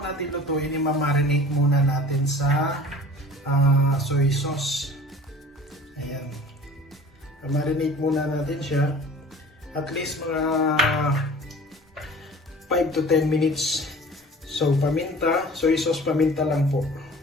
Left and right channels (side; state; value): both; normal; correlation 0.43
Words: natin lutuin, i-marinate muna natin sa soy sauce. Ayan, marinate muna natin siya at least mga 5 to 10 minutes. So paminta, soy sauce, paminta lang po.